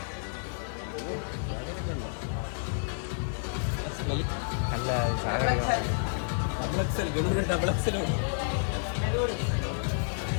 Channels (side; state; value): right; silent; digital silence